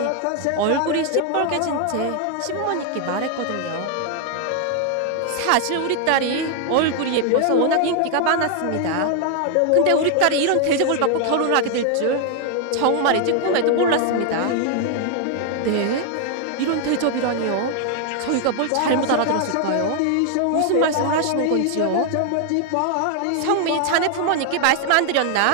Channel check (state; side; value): different; both; correlation 0.00